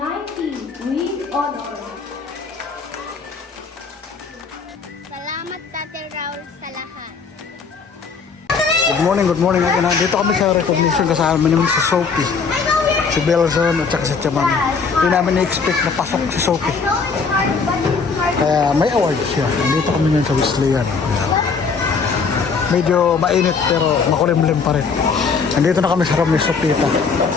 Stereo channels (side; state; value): right; quieter; 5.2 dB